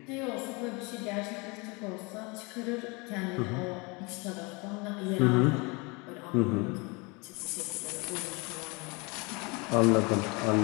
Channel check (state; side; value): quieter; right; 28.3 dB